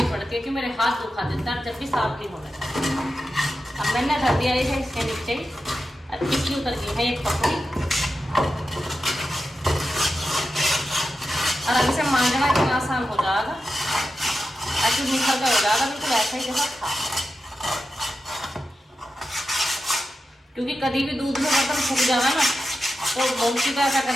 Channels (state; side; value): normal; both; correlation 0.91